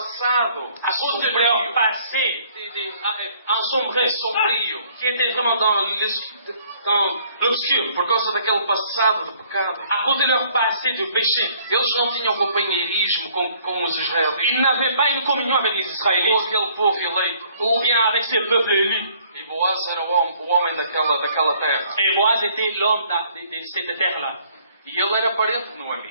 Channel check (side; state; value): both; inverted; correlation -0.60